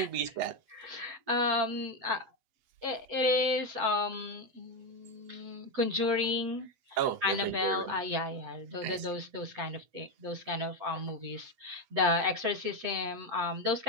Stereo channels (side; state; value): left; late; 8.1 ms